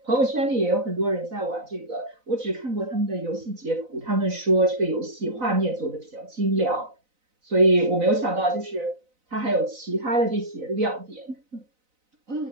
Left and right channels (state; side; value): late; left; 4.0 ms